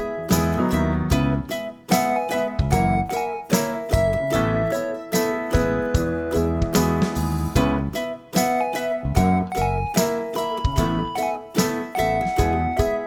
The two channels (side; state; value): both; identical; correlation 1.00